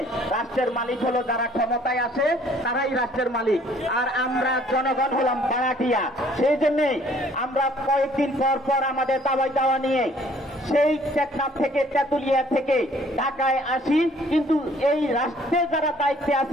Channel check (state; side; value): normal; both; correlation 0.59